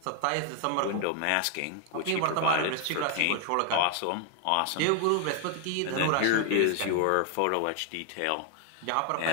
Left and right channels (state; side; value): different; both; correlation 0.00